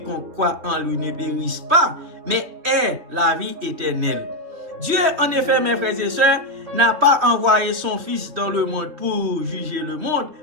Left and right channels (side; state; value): left; late; 3.2 ms